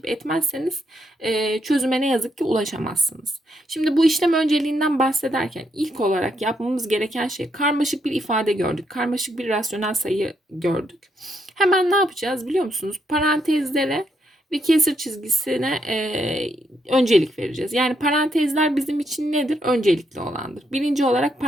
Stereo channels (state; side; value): normal; both; correlation 0.77